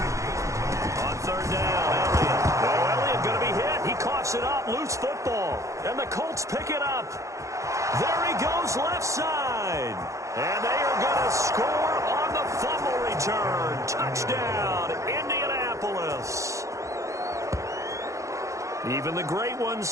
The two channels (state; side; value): late; left; 0.15 ms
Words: It up, loose football, and the Colts pick it up. There he goes, left side. And they are going to score on the fumble return. Touchdown, Indianapolis. Even the great ones,